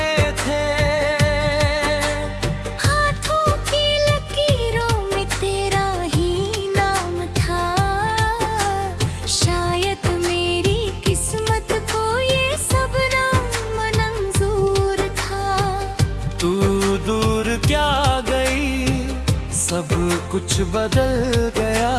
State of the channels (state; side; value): identical; both; correlation 1.00